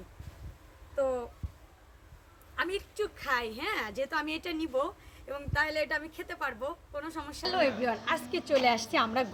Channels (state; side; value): identical; both; correlation 1.00